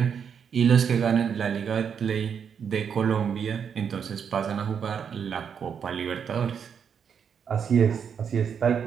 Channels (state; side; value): quieter; left; 7.3 dB